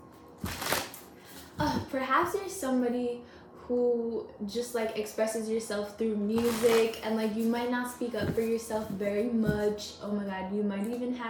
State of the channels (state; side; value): identical; both; correlation 1.00